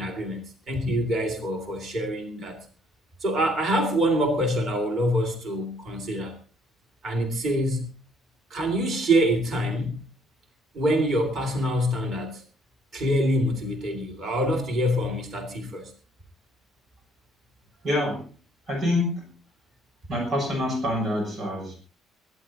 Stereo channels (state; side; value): normal; both; correlation 0.64